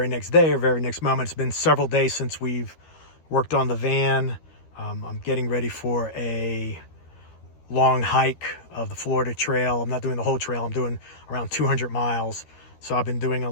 next day or very next moment. It's been several days since we've worked on the van. I'm getting ready for a long hike of the Florida Trail. I'm not doing the whole trail. I'm doing around 200 miles. So I've been doing a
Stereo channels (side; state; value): right; late; 13 ms